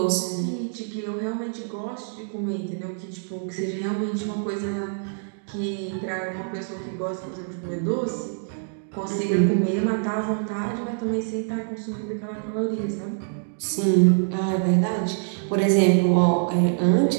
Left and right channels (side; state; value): left; silent; digital silence